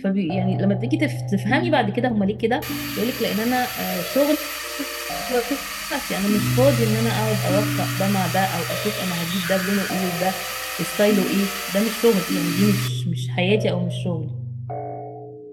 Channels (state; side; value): identical; both; correlation 1.00